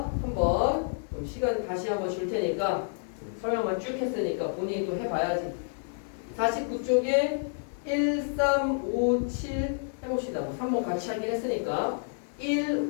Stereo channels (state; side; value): silent; right; 58 dB below the other